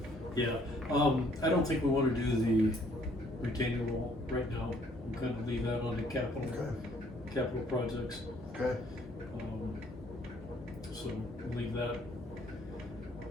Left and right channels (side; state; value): both; normal; correlation 0.63